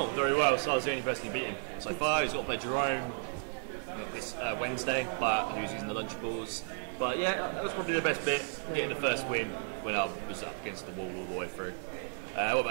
Very well, so I was the only person who beat him so far. He's got to play Jerome this Wednesday, but who's using the Lunchables. But yeah, that was probably the best bit, getting the first win when I was up against the wall all the way through. What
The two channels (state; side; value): silent; left; 55 dB below the other